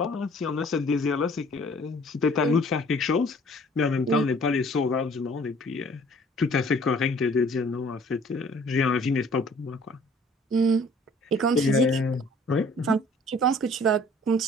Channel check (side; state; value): both; normal; correlation 0.54